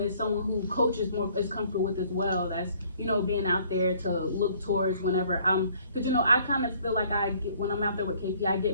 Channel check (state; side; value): inverted; both; correlation -0.59